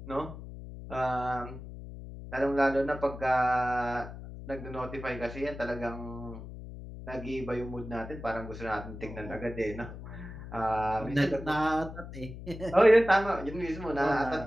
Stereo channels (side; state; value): left; noise; hum, 12 dB below the sound